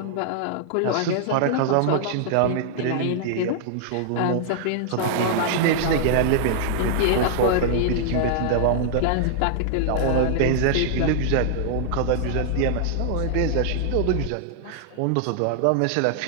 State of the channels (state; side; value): different; both; correlation -0.01